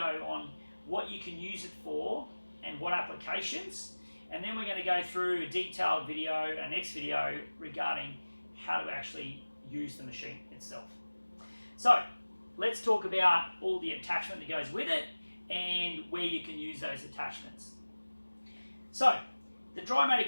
on what you can use it for and what applications. And then we're going to go through a detailed video, a next video, regarding how to actually use the machine itself. So let's talk about all the attachment that goes with it and where you can use those attachments. So, the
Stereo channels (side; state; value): both; inverted; correlation -1.00